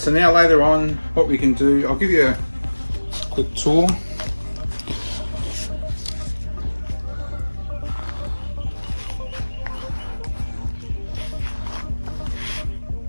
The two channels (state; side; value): inverted; both; correlation -1.00